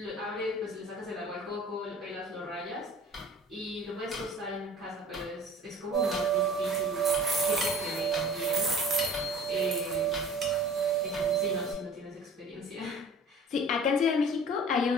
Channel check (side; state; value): both; normal; correlation 0.45